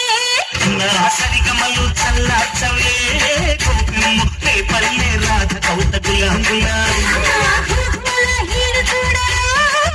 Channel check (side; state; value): both; identical; correlation 1.00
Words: సరిగమలు చల్లార్చవే కోపిమ్ము రే పల్లె రాధ కౌత గులాంగులా